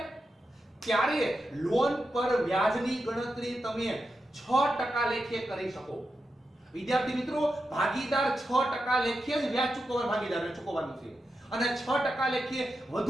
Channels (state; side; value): normal; both; correlation 0.88